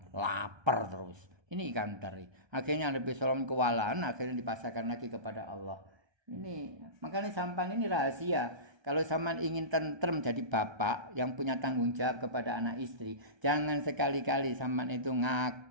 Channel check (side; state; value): left; late; 1.3 ms